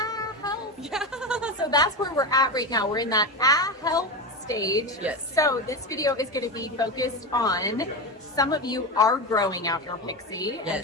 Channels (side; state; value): both; normal; correlation 0.19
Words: Yeah. So that's where we're at right now. We're in that help stage. Yes. So this video is going to be focused on some of you are growing out your pixie, and